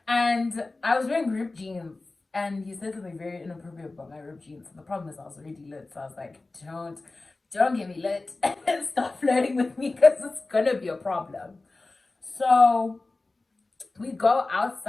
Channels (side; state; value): right; quieter; 3.3 dB